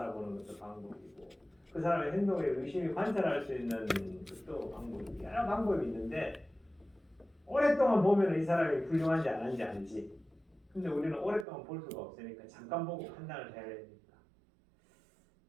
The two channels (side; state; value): left; drops out; at 11.5 s